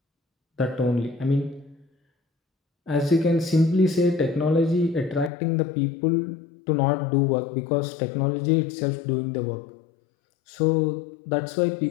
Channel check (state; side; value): drops out; right; at 5.3 s